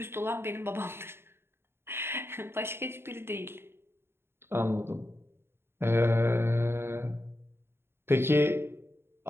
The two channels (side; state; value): left; late; 0.11 ms